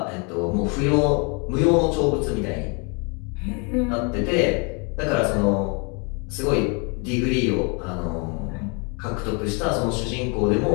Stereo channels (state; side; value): quieter; right; 33.8 dB